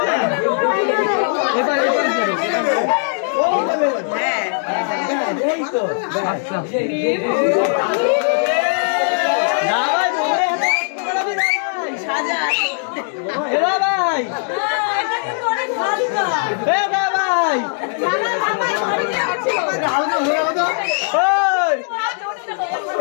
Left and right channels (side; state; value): right; silent; digital silence